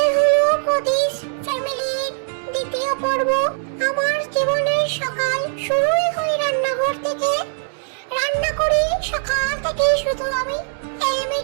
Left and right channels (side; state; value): left; silent; digital silence